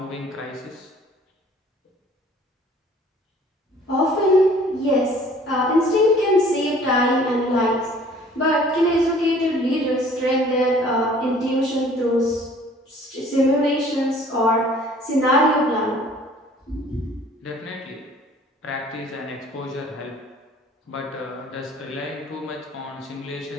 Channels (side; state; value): both; normal; correlation 0.53